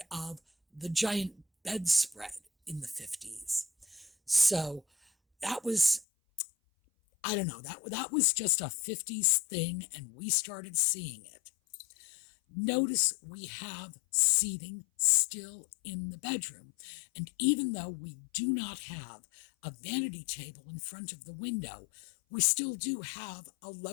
of the giant bedspread in the 50s. So that was, I don't know, that was just a 50s thing, and we started seeing it. Notice we have seating still in the bedroom, and even though we do not have a vanity table in front of the window, we still do have a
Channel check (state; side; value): drops out; right; at 6.1 s